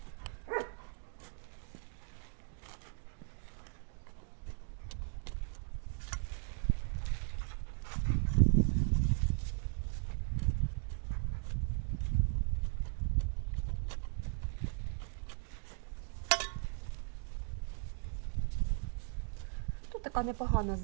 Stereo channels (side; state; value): left; silent; 53 dB below the other